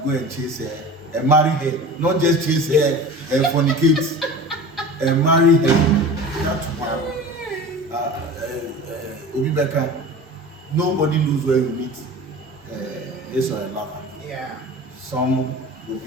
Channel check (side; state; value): both; normal; correlation 0.36